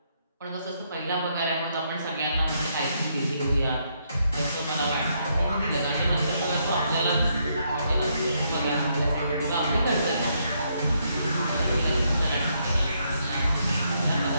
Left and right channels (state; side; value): inverted; both; correlation -0.75